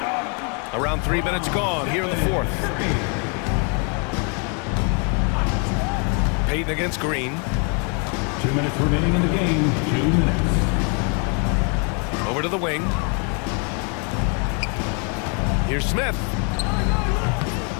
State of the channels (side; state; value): right; quieter; 37.6 dB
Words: Around 3 minutes gone here in the fourth. Payton against Green. 2 minutes remaining in the game. 2 minutes. Over to the wing. Here's Smith.